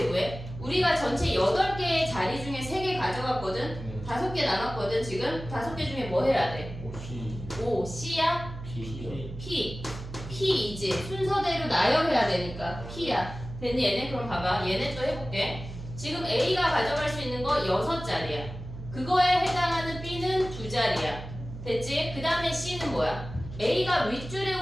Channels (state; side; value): noise; right; hum, 11 dB below the sound